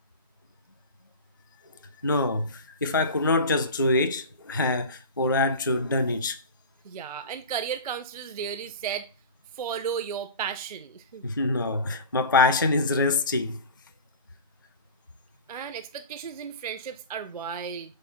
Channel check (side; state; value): both; inverted; correlation -0.31